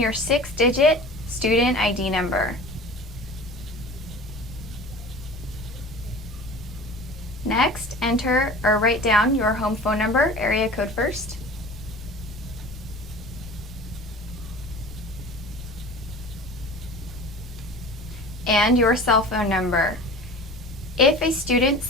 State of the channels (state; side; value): normal; both; correlation 0.39